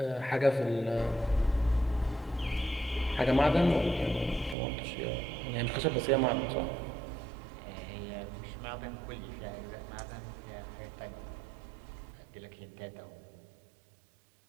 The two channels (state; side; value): drops out; left; at 4.5 s